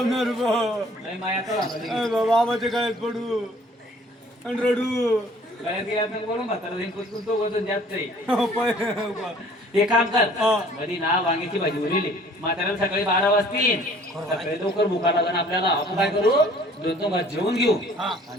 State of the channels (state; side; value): normal; both; correlation 0.54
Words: बाबाच्या गळ्यात पडू आणि रडू. बोलून म्हातारा तो वजन जास्त आहे. ते काम कर कधी ना वांग्याची भाजी उरली म्हाताऱ्याला सकाळी 12 वाजतील. सकाळी लवकर भुका लागण आपल्याला. आपण काय करू 2 भात जेवून घेऊ आणि